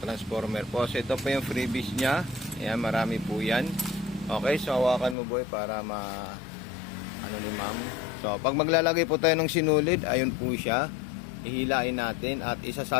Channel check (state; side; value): drops out; right; at 5.2 s